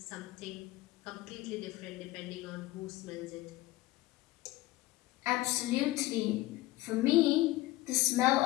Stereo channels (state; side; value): quieter; right; 18.0 dB